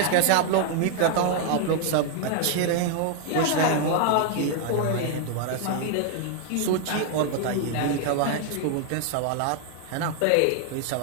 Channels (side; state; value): both; different; correlation 0.00